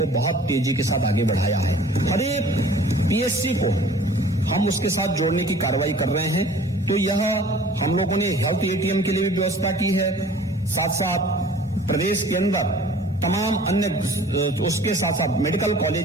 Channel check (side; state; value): both; normal; correlation 0.49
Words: बहुत तेजी के साथ आगे बढ़ाया है। हर एक PSC को हम उसके साथ जोड़ने की कार्रवाई कर रहे हैं। तो यह हम लोगों ने हेल्थ ATM के लिए भी व्यवस्था की है, साथ साथ प्रदेश के अंदर तमाम अन्य उसके साथ साथ मेडिकल